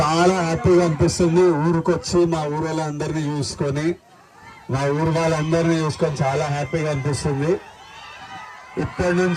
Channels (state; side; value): identical; both; correlation 1.00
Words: హ్యాపీగా అనిపిస్తుంది. ఊరికి వచ్చి మా ఊరు వాళ్ళందరినీ చూసుకొని, మా ఊరు వాళ్ళందరినీ చూసుకొని చాలా హ్యాపీగా అనిపిస్తుంది. ఇప్పటి